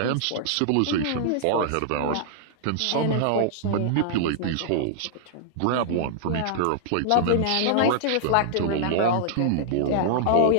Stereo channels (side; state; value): both; different; correlation -0.01